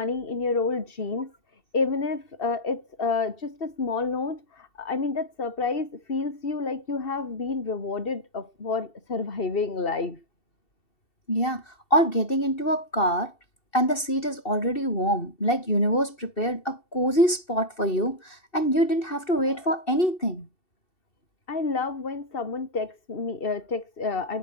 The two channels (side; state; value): right; late; 2.7 ms